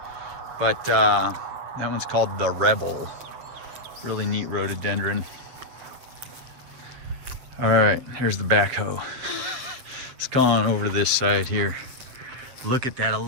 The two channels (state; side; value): late; left; 7.8 ms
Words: But that one's called the Rebel. Really neat rhododendron. All right, here's the backhoe. Let's go on over to this side here. Look at that